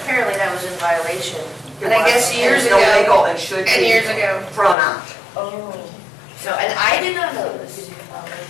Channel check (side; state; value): right; drops out; at 4.8 s